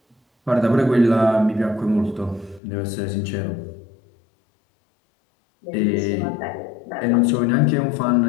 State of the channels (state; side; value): drops out; right; at 2.6 s